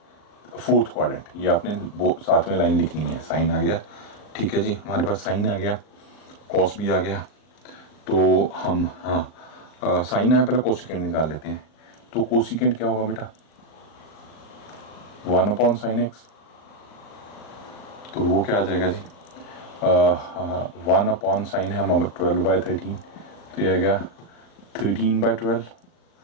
fourth quadrant, ये आपने साथ में लाइन लिखनी है। साइन आ गया, ठीक है जी, हमारे पास साइन आ गया, कॉस भी आ गया। तो हम साइन आया, पहले कोसिकेंट निकाल लेते हैं। तो कोसिकेंट क्या होगा बेटा, 1/sin x। तो वो क्या आ जाएगा जी, 1/sin है हमारा 12/13, तो ये आ गया 13/12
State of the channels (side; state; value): right; late; 39 ms